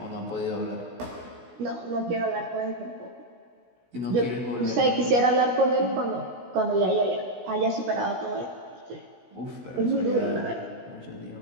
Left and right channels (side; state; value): left; late; 16 ms